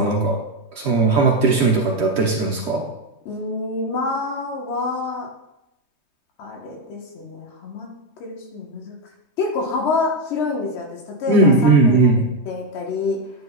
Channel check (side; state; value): right; late; 3.2 ms